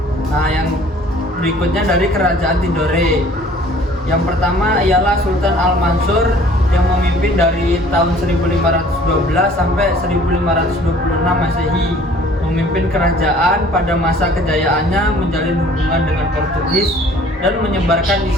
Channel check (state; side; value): normal; both; correlation 0.53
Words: Nah, yang berikutnya dari kerajaan Tidore. Yang pertama ialah Sultan Al-Mansur yang memimpin dari tahun 1512 sampai 1526 Masehi. Memimpin kerajaan pada masa kejayaannya, menjalin hubungan dengan Portugis dan menyebarkan